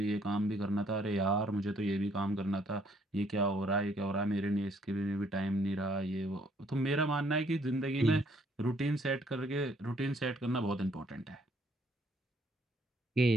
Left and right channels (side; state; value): both; normal; correlation 0.66